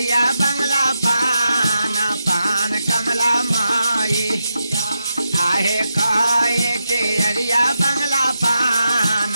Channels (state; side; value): inverted; both; correlation -0.86